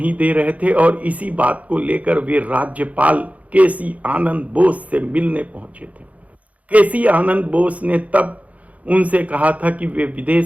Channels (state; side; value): late; left; 0.069 ms